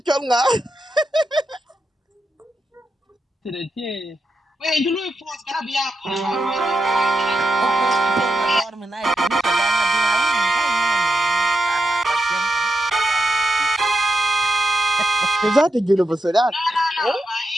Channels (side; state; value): both; normal; correlation 0.86